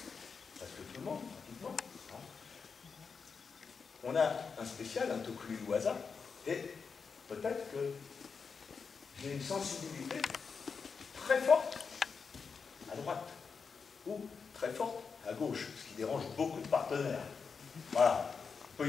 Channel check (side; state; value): right; quieter; 5.5 dB